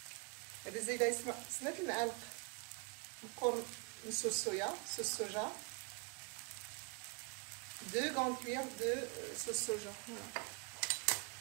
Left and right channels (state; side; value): quieter; left; 31.8 dB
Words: بالزايده سمات المعالق القرن من صوص soja 2 grandes cuillères de sauce soja. Voilà.